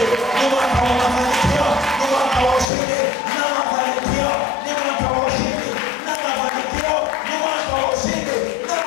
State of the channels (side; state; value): right; drops out; at 2.7 s